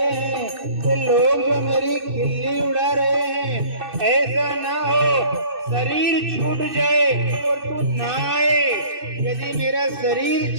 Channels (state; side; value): late; left; 2.6 ms